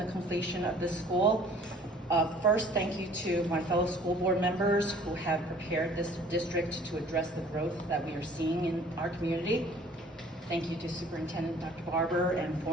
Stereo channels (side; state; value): both; normal; correlation 0.53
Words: completion of this school. First, thank you to my fellow school board members who have prepared this district to address the growth that we are seeing in our community. Thank you to Superintendent Dr. Barber and